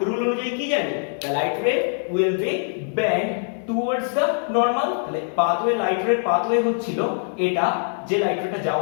রুল অনুযায়ী কি জানি, দ্য লাইট রে will be bend towards the normal. তাহলে পাথওয়ে লাইট রে পাথওয়ে হচ্ছিল এটা, যে লাইট রেটা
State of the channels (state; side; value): silent; right; 61 dB below the other